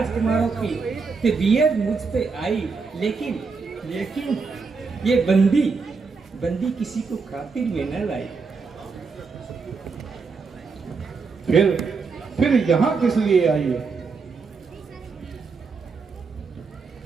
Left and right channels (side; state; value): left; quieter; 4.8 dB